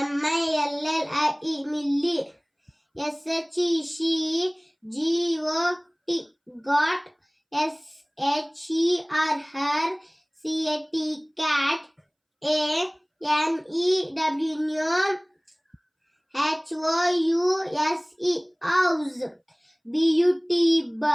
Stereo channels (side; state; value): both; identical; correlation 1.00